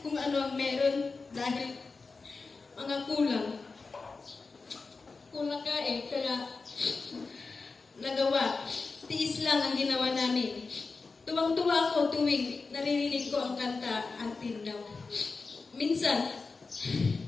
kung ano ang meron dahil mga kulang. Kulang ka kaya nagawa. Tiis lang ang ginawa namin. Tuwang-tuwa ako tuwing naririnig ko ang kanta Until Now. Minsan,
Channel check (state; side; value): quieter; right; 4.2 dB